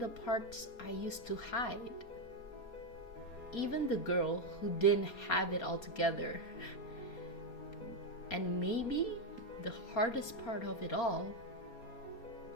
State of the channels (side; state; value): right; late; 4.3 ms